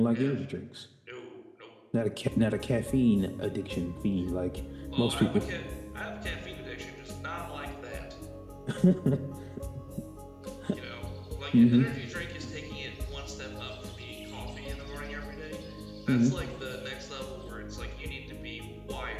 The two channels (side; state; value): both; identical; correlation 1.00